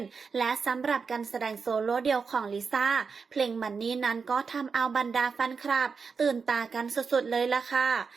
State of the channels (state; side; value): quieter; left; 5.3 dB